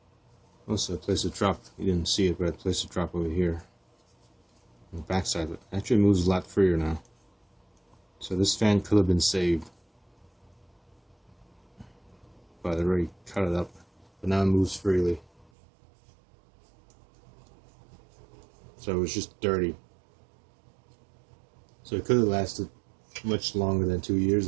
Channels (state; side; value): drops out; left; at 15.5 s